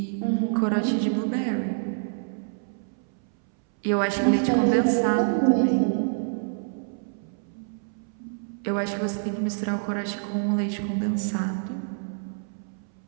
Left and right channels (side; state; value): left; silent; 60 dB below the other